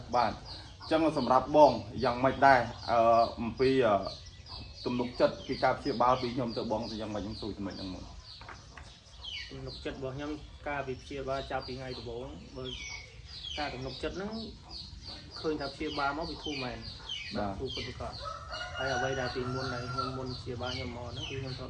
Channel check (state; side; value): identical; both; correlation 1.00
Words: បាទអញ្ចឹងសម្រាប់បងយ៉ាងម៉េចដែរអំពីទំនុកចិត្តពីការព្យាបាលពីខ្ញុំទៅបងទៅយ៉ាងម៉េចខ្ញុំសួរចំណុចហ្នឹងមកទំនុកចិត្តរបស់ខ្ញុំការវិព្យាបាលចាប់ពីថ្ងៃដំបូងបើការទំនុកចិត្តហ្នឹងឃើញថាព្យាបាលមកវាធូរមែនបាទធូរពិតប្រាកដហើយអ្វីដែលពីមុនដែលខ្ញុំមុនព្យាបាលខ្ញុំមកហ្នឹងគឺខ្ញុំធ្លាប